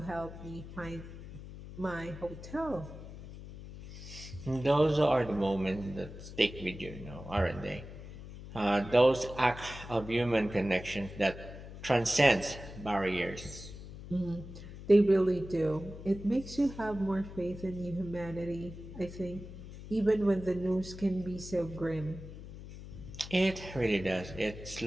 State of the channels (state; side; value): noise; left; hum, 13 dB below the sound